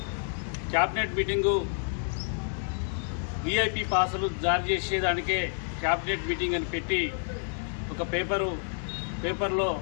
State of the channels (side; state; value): right; silent; 58 dB below the other